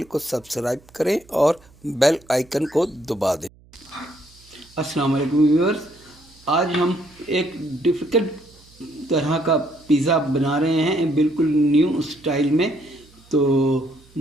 को सब्सक्राइब करें और बेल आइकन को दबा दें। अस्सलाम वालेकुम व्यूअर्स, आज हम एक डिफ़िकल्ट तरह का पिज़्ज़ा बना रहे हैं, बिल्कुल न्यू स्टाइल में। तो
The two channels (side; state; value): right; noise; hum, 27 dB below the sound